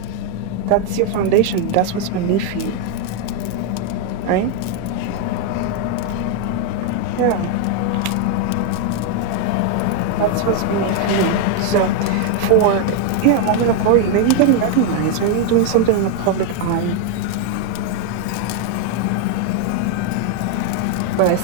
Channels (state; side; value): different; both; correlation 0.01